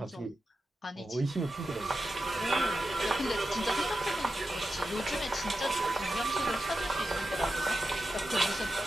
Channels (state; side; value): normal; both; correlation 0.91